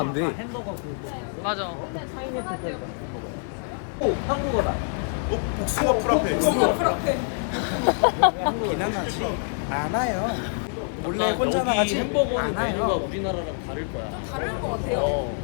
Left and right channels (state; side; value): silent; right; 61 dB below the other